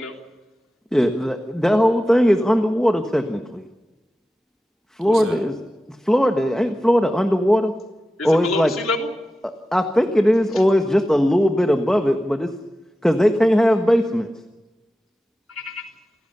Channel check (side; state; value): both; normal; correlation 0.94